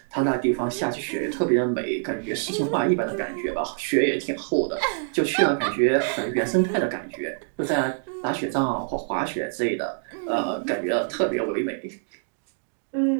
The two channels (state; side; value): silent; left; digital silence